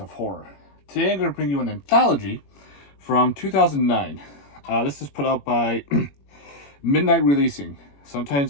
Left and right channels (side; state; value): right; late; 21 ms